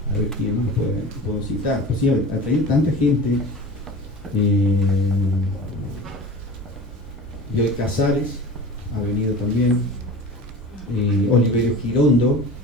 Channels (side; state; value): both; normal; correlation 0.35